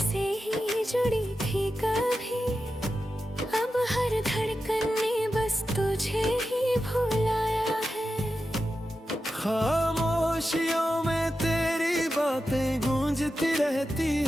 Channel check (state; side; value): normal; both; correlation 0.91